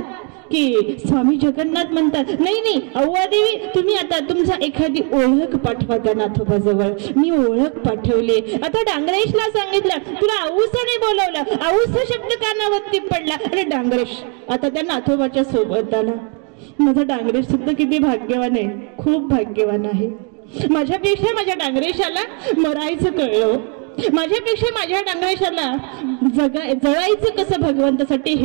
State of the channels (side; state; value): left; quieter; 37.9 dB